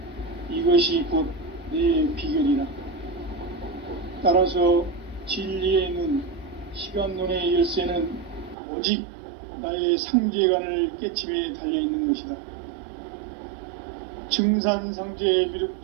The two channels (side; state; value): left; drops out; at 8.6 s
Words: 이것이 곧 내 비결이라. 따라서 진리의 문, 시간론의 열쇠는 오직 나의 상제관을 깨침에 달려있는 것이다. 증산상제